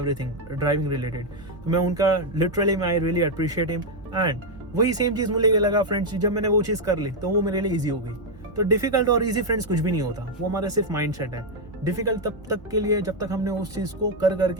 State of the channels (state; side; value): normal; both; correlation 0.01